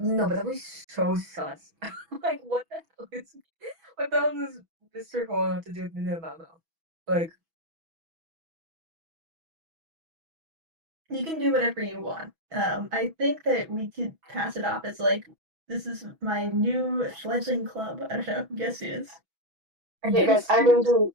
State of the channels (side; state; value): left; late; 6.1 ms